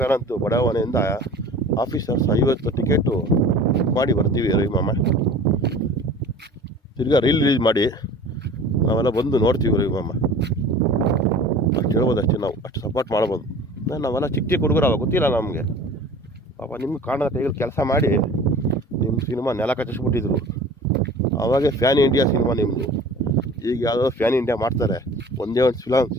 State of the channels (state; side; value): normal; both; correlation 0.43